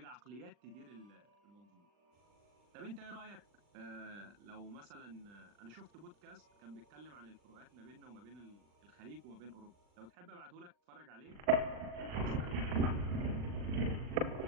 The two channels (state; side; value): late; left; 40 ms